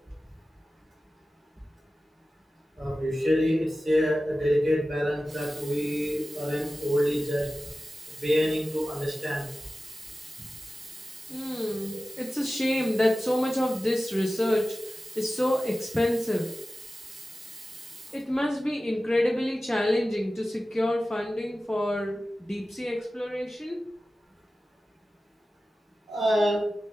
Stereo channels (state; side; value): normal; both; correlation 0.95